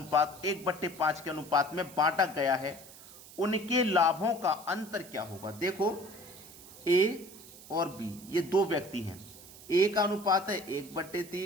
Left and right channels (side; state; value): right; noise; hiss, 18 dB below the sound